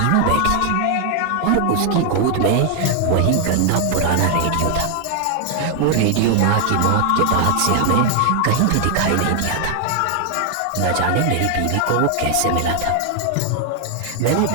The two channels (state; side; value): different; both; correlation 0.00